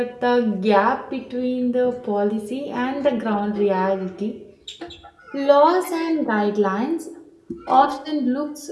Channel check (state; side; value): identical; both; correlation 1.00